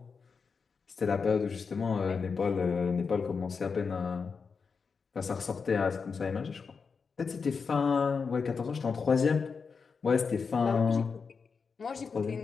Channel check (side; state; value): right; quieter; 5.3 dB